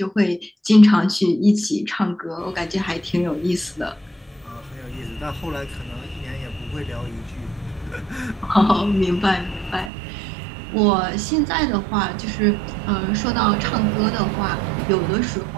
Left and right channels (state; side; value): drops out; left; at 9.9 s